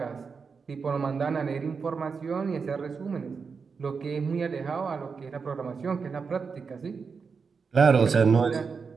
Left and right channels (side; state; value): left; quieter; 5.4 dB